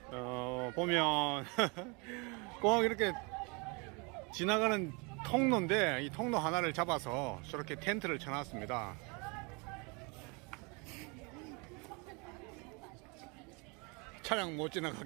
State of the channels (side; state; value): left; quieter; 30.7 dB